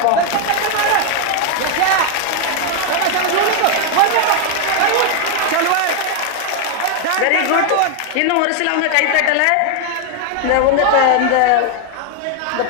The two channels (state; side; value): different; both; correlation 0.00